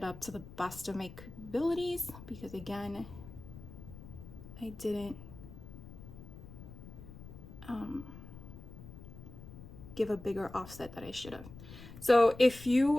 up to the best of my capabilities, because again, I didn't give a bigger offset that I should have. So if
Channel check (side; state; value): left; noise; rumble, 14 dB below the sound